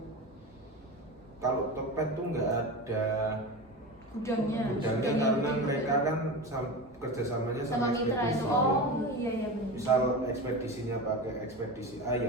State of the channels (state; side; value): normal; both; correlation 0.26